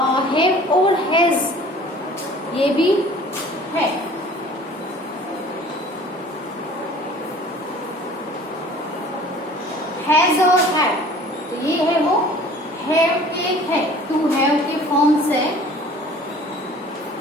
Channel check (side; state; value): both; normal; correlation 0.48